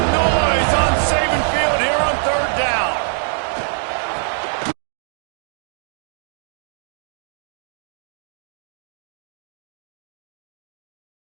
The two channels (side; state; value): left; silent; digital silence